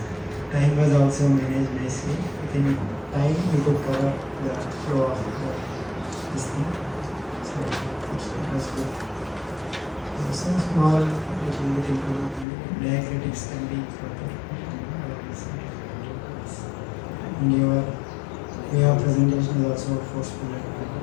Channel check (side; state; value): right; drops out; at 12.5 s